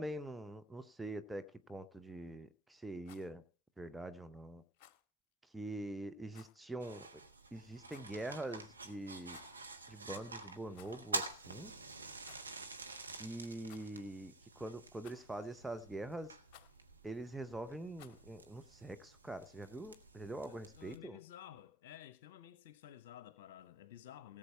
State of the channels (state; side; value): normal; both; correlation 0.43